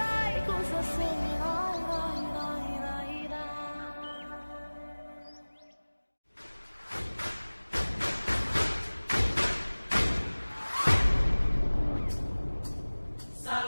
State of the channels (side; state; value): both; inverted; correlation -1.00